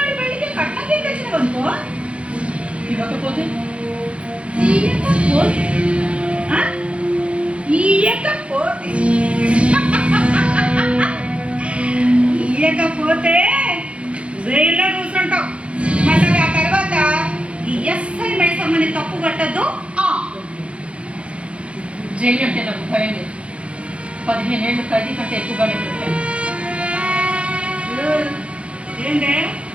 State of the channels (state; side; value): late; left; 0.060 ms